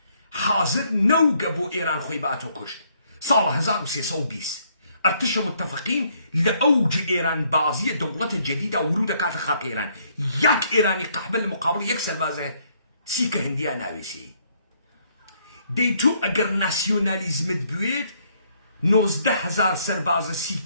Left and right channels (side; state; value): both; inverted; correlation -0.69